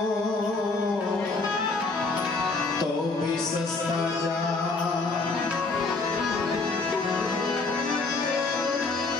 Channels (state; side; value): quieter; right; 3.7 dB